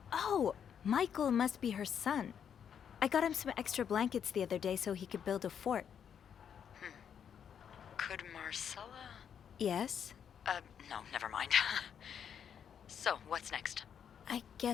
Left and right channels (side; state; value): right; quieter; 8.1 dB